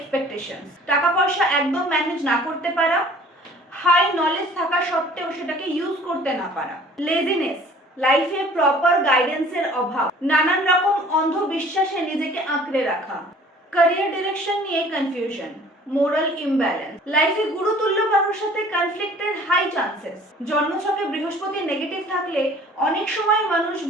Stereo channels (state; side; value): normal; both; correlation 0.50